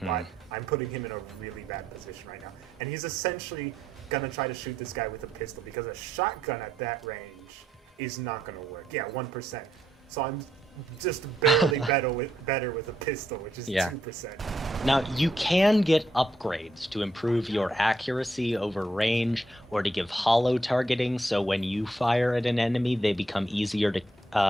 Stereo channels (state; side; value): normal; both; correlation 0.76